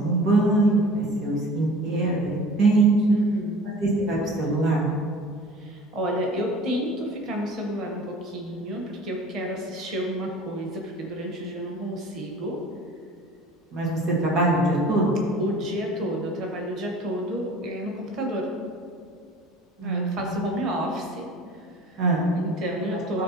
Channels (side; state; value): both; normal; correlation 0.43